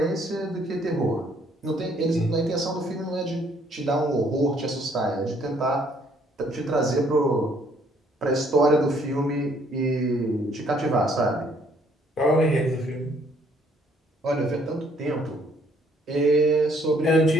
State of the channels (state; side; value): normal; both; correlation 0.65